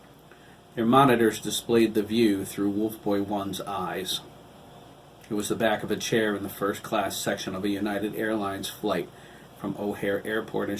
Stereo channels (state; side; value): identical; both; correlation 1.00